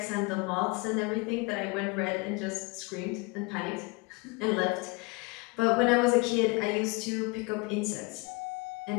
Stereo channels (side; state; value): right; quieter; 27.4 dB